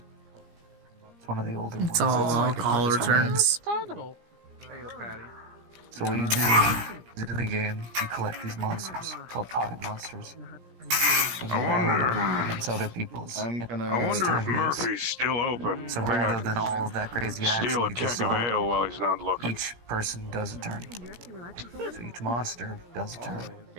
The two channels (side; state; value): left; late; 17 ms